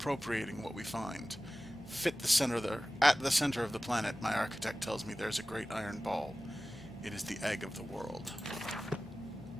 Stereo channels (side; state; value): both; normal; correlation 0.96